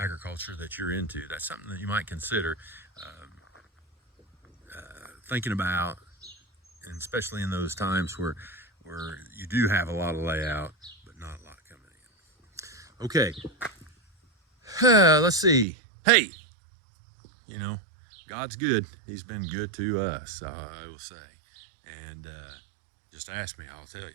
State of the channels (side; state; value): left; drops out; at 15.7 s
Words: agriculture that you're into, that's something that you might consider thinking about, and especially in those times where you do have a lot of layout but not a lot coming in. Okay, let's see. Hey, you know, God's good. He's been good to us, I will say. And just ask me, I'll tell